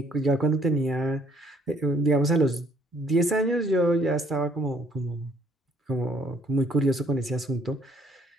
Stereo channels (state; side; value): normal; both; correlation 0.63